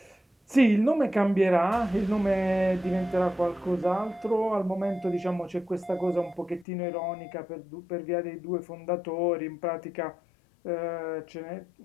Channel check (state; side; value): drops out; right; at 6.7 s